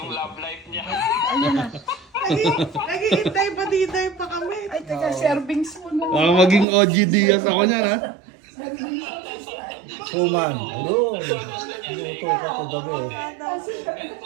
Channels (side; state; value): left; drops out; at 6.7 s